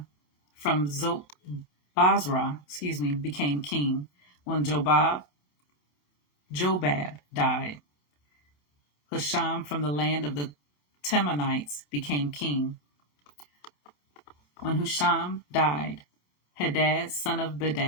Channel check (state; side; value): late; right; 27 ms